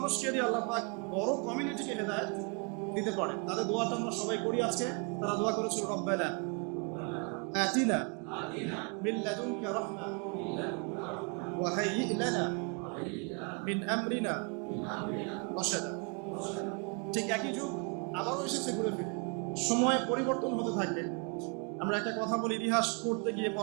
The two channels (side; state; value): left; quieter; 35.5 dB